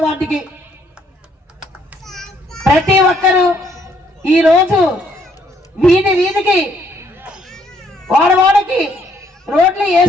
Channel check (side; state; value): both; normal; correlation 0.68